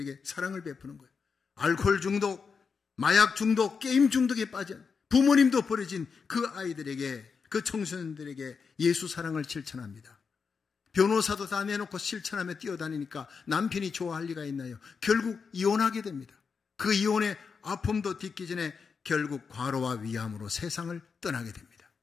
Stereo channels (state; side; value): quieter; right; 5.5 dB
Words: 사랑을 베푸는 거예요. 알코올 중독, 마약 중독, 게임 중독에 빠진 부모님도 버려진 그 아이들에게, 그 청소년들에게 예수 사랑을 실천합니다. 변호사도 다 내놓고 실천하며 뛰어다니니까 남편이 좋아할 리가 있나요? 결국 이혼하게 됩니다. 그 이혼의 아픔도 딛기 전에 결국 과로와 위암으로 세상을 떠나게 됩니다.